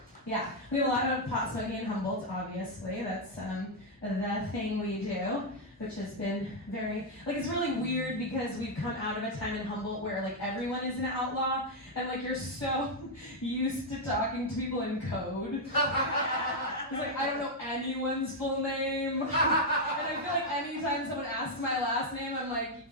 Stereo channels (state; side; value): normal; both; correlation 0.00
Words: Yeah, we have a lot of pot smoking in Humboldt, obviously. That's the thing we do, which has been very, it's really weird because we've come out of a time in Humboldt where everyone is an outlaw and you're so used to talking to people in code. It's I don't know anyone's full name. And I feel anytime someone asks my last name, I'm